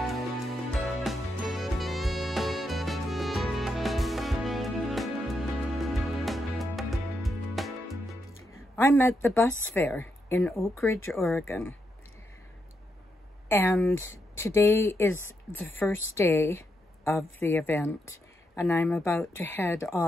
I'm at the bus fair in Oakridge, Oregon, and today is the first day of the event, and I'm about to head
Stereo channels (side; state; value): both; normal; correlation 0.82